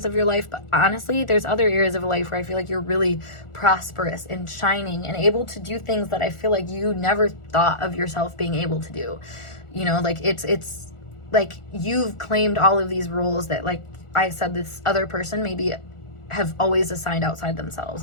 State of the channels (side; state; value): right; late; 1.4 ms